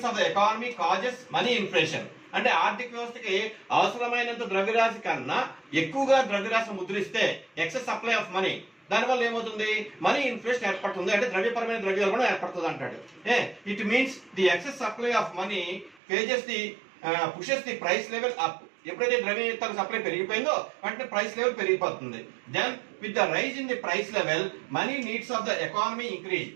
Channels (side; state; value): left; drops out; at 16.0 s